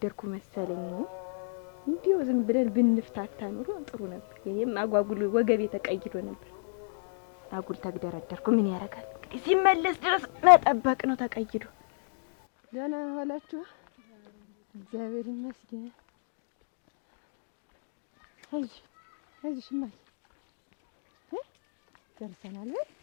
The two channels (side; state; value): right; silent; digital silence